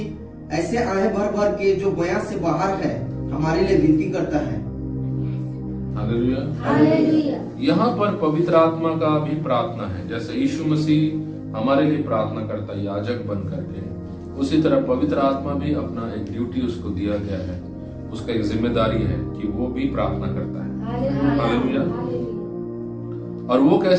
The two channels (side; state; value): both; identical; correlation 1.00